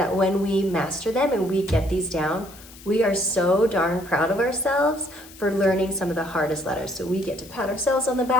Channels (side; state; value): left; noise; hiss, 20 dB below the sound